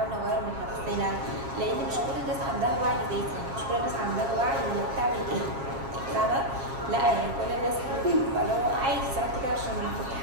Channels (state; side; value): late; left; 7.4 ms